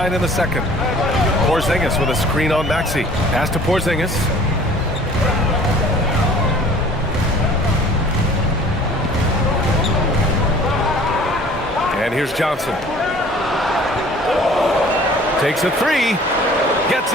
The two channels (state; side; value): normal; both; correlation 0.50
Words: in the second. Porzingis with a screen on Maxey. Pass to Porzingis. And here's Johnson. Takes a 3. Gets